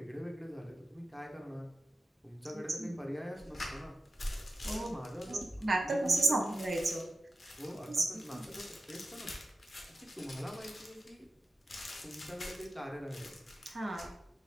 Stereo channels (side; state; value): both; normal; correlation 0.94